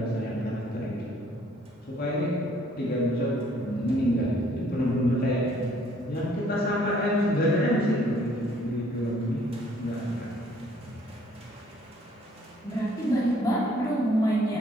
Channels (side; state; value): both; normal; correlation 0.61